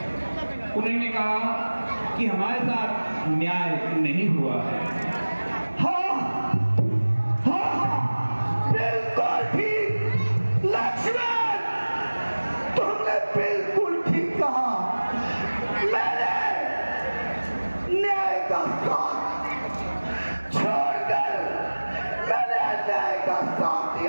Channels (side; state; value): both; inverted; correlation -1.00